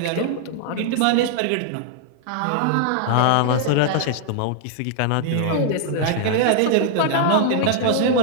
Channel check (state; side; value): different; both; correlation -0.01